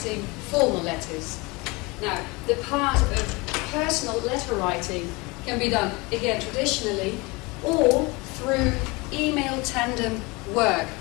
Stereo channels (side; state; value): right; quieter; 25.3 dB